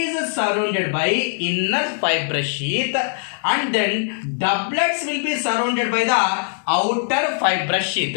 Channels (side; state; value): right; silent; digital silence